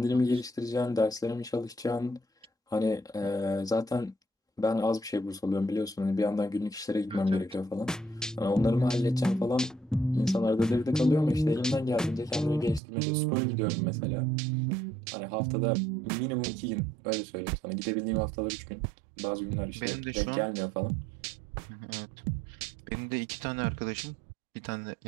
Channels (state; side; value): drops out; left; at 12.8 s